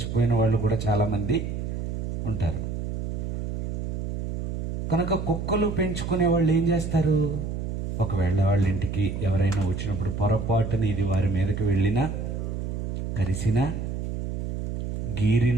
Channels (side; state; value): right; noise; hum, 3 dB below the sound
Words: వాళ్ళు కూడా చాలామంది ఉంటారు. కనుక కుక్కలు పెంచుకునే వాళ్ళు ఏం చేస్తారు? ఒకవేళ వాళ్ళ ఇంటికి ఎవరైనా వచ్చినప్పుడు పొరపాటున ఇది వారి మీదకి వెళ్ళినా, కరిసినా,